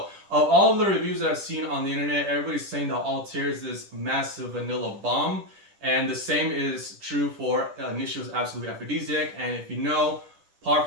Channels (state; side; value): late; left; 10 ms